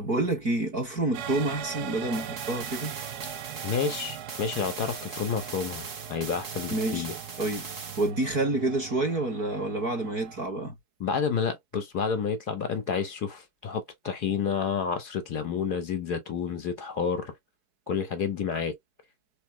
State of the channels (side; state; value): left; late; 4.7 ms